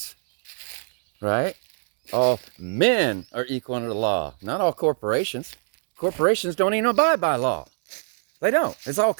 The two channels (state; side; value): silent; left; 62 dB below the other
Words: right? All men are equal under the law, not all corporations. Corporations don't even abide by law. They don't. It's all